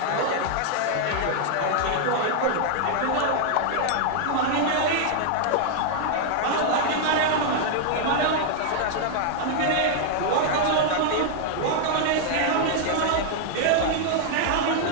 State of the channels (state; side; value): different; both; correlation -0.01